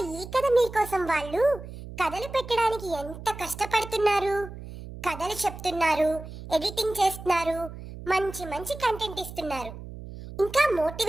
ఈ కథ మీకోసం వాళ్ళు కథలు పెట్టడానికి ఎంత కష్టపడుతున్నారు. కథలు చెప్తున్నారు, ఎడిటింగ్ చేస్తున్నారు, మంచి మంచి కంటెంట్ ఇస్తున్నారు, ఇంకా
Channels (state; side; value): noise; right; hum, 12 dB below the sound